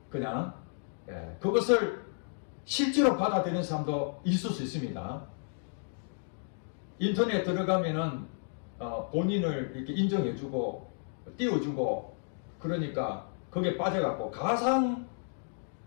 그냥 그것을 실제로 받아들이는 사람도 있을 수 있습니다. 인터넷에 들어가면은 본인을 이렇게 인정해주고 띄워주고 그러니까 거기에 빠져갖고 가상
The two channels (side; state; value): right; silent; digital silence